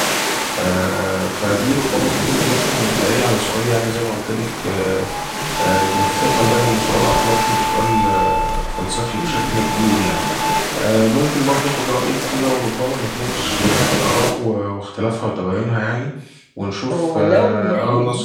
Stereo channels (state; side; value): identical; both; correlation 1.00